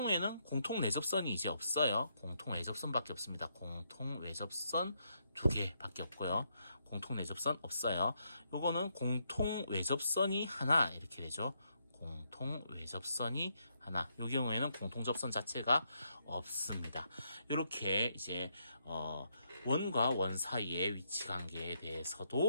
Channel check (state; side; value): inverted; both; correlation -0.77